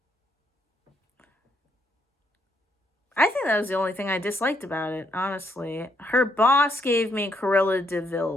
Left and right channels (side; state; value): both; normal; correlation 0.73